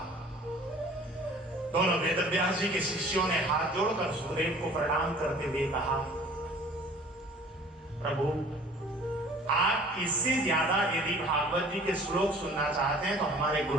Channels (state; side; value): normal; both; correlation 0.49